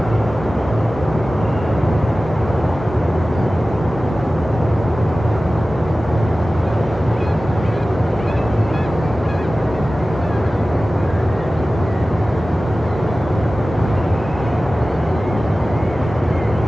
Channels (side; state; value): both; normal; correlation 0.96